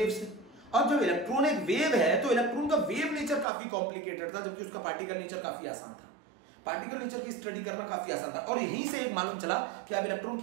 से। अब जब इलेक्ट्रॉन एक वेव है तो इलेक्ट्रॉन का वेव नेचर काफी कॉम्प्लिकेटेड था, जबकि उसका पार्टिकल नेचर काफी आसान था। पार्टिकल नेचर की स्टडी करना काफी आसान था, और यहीं से एक मालूम चला कि आप इलेक्ट्रॉन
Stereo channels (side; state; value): left; drops out; at 3.5 s